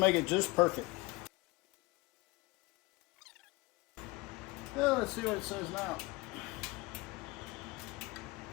it just perfect. Well, let's see what it says now.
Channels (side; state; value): right; quieter; 23.1 dB